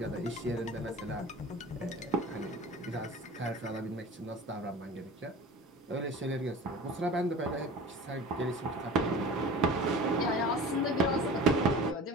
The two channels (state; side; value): normal; both; correlation 0.38